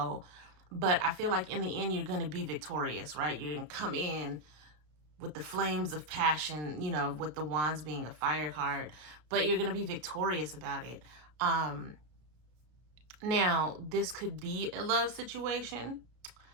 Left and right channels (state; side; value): late; left; 33 ms